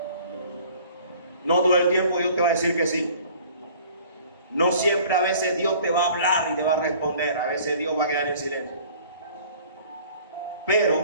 No todo el tiempo Dios te va a decir que sí. No siempre, a veces Dios te va a hablar y te va a responder. A veces Dios va a quedar en silencio.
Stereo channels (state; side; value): inverted; both; correlation -0.51